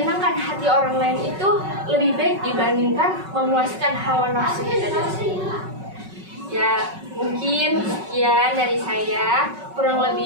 hati orang lain itu lebih baik dibandingkan memuaskan hawa nafsu kita sendiri. Ya mungkin sekian dari saya, kurang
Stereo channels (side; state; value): left; late; 5.3 ms